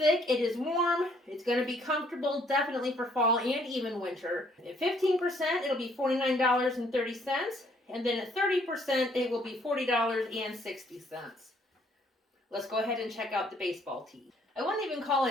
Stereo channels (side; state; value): both; normal; correlation 0.64